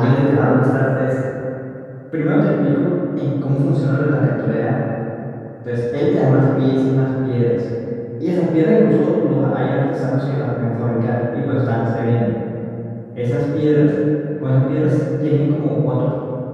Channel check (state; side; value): identical; both; correlation 1.00